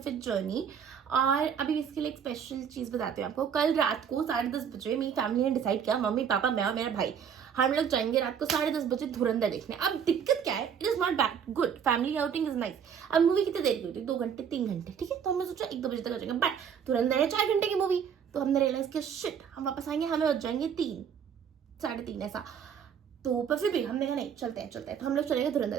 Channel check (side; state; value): left; quieter; 7.6 dB